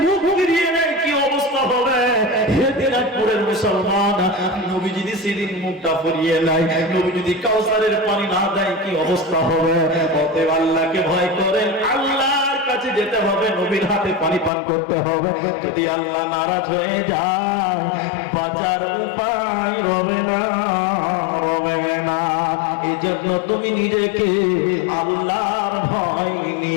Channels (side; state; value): right; drops out; at 14.5 s